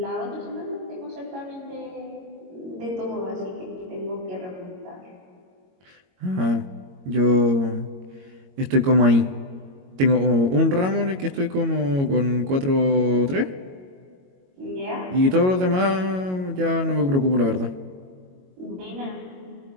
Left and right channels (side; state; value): left; late; 22 ms